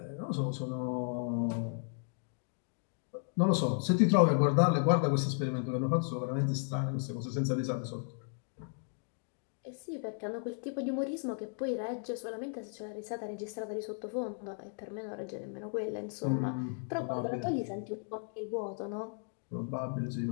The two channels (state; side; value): silent; right; 55 dB below the other